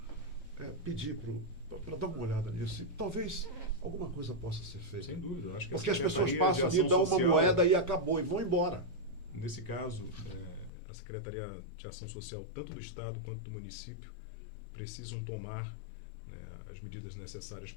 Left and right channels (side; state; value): right; drops out; at 10.7 s